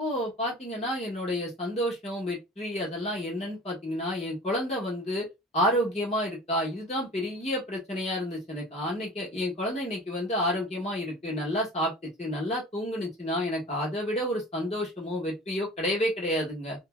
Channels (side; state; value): both; normal; correlation 0.41